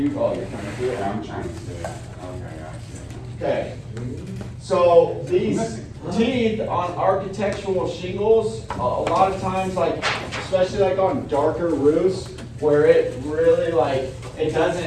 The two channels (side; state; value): both; identical; correlation 1.00